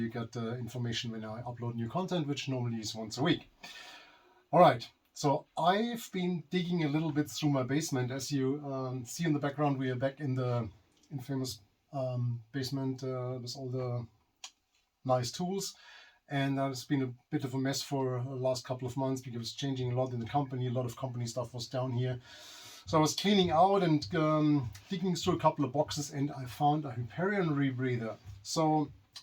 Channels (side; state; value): both; identical; correlation 1.00